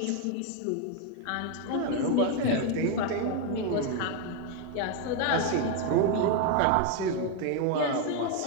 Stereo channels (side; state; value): both; different; correlation 0.01